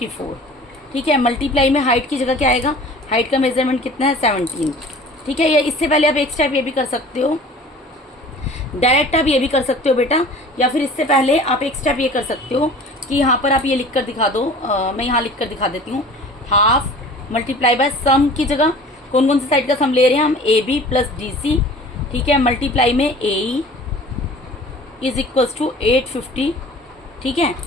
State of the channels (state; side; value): normal; both; correlation 0.44